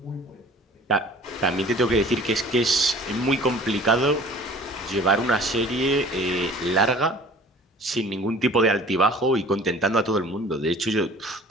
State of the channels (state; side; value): normal; both; correlation 0.48